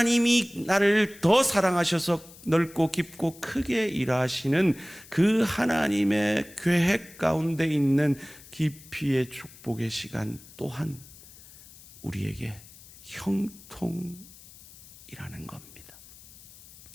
나를 더 사랑하셔서 넓고 깊고 크게 일하시는 그 하나님의 계획 가운데 있는 깊이의 축복의 시간 또한 우리에게 형통이라는 겁니다.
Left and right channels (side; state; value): left; noise; hiss, 21 dB below the sound